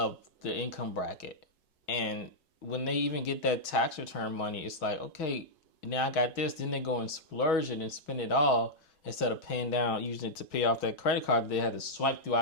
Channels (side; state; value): right; late; 4.6 ms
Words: the income bracket. And when they even get that tax return money, it's like, okay, now I got this. Then they go and splurge it and spend it all instead of paying down, using it to pay off that credit card they had to swipe